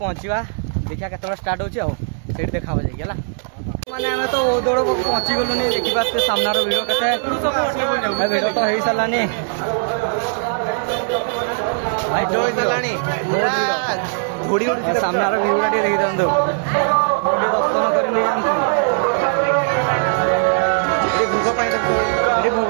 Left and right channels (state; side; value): silent; left; digital silence